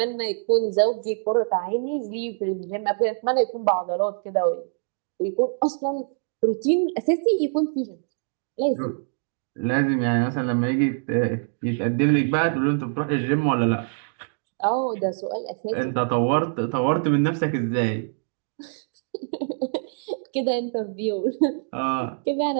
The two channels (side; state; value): left; silent; 62 dB below the other